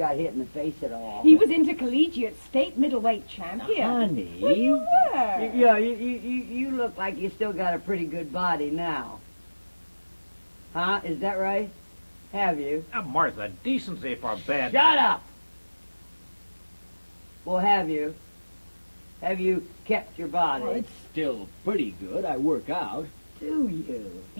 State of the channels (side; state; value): both; inverted; correlation -1.00